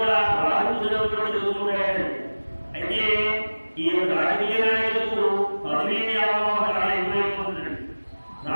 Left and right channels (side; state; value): both; inverted; correlation -1.00